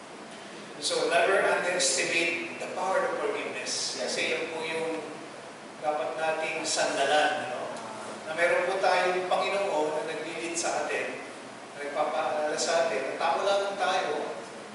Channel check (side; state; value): both; identical; correlation 1.00